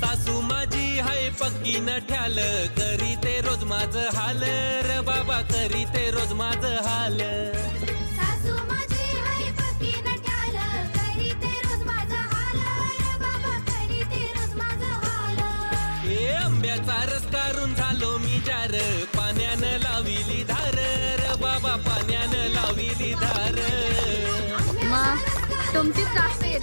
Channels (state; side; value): inverted; both; correlation -1.00